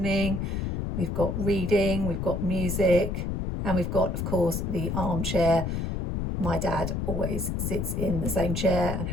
we've got reading, we've got music, and we've got, of course, the armchair. My dad always sits in the same chair and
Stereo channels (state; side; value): noise; left; rumble, 2 dB below the sound